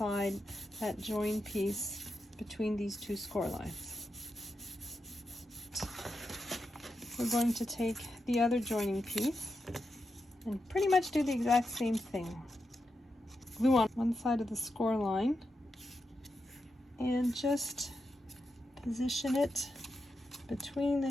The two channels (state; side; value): normal; both; correlation 0.87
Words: that join piece between these 2 score lines. We're going to take the other joining piece and pretty much do the exact same thing. Glue on one side of the score line and just position it between the